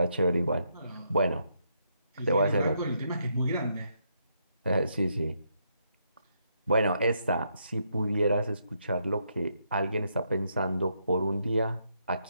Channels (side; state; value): both; inverted; correlation -0.77